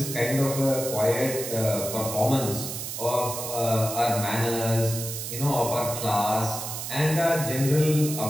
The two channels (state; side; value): noise; right; hiss, 6 dB below the sound